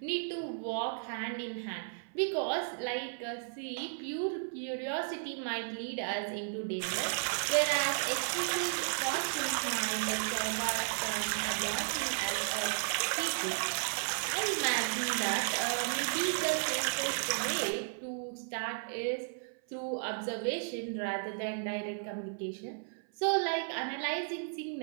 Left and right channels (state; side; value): silent; left; 55 dB below the other